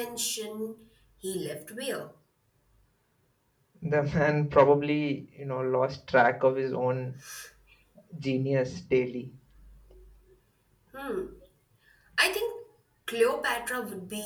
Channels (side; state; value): both; identical; correlation 1.00